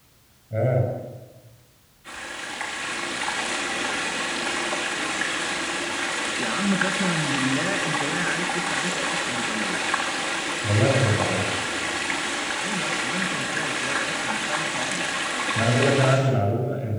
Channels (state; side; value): identical; both; correlation 1.00